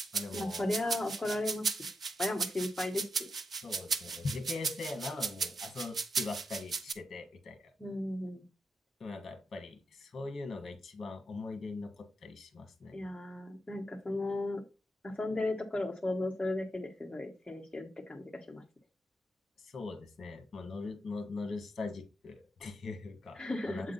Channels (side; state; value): both; normal; correlation 0.84